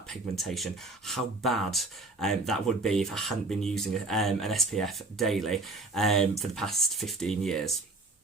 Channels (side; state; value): left; quieter; 3.2 dB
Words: pigmentation, how bad that would be if I hadn't been using an SPF daily for the past 15 years.